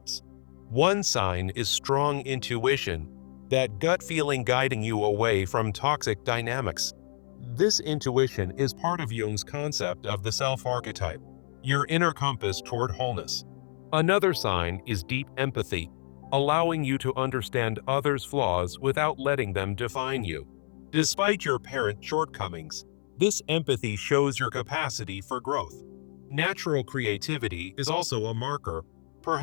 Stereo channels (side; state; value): right; silent; 59 dB below the other